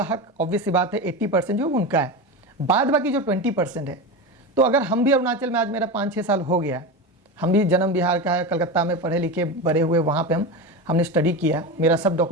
हक ऑब्वियस सी बात है 80% जो उनका है, बाद बाकी जो 20% है। तो अगर हम भी अरुणाचल में, आज मेरा 5-6 साल हो गया, हम भी जन्म बिहार का है, कलकत्ता में पढ़े लिखे बड़े हुए, वहाँ पे हमने स्टडी किया, मेरा सब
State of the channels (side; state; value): both; normal; correlation 0.22